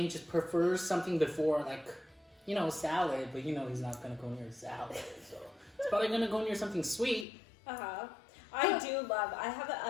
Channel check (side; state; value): right; drops out; at 7.2 s